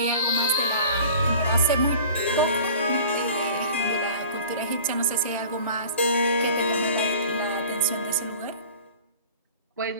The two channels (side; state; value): both; inverted; correlation -0.44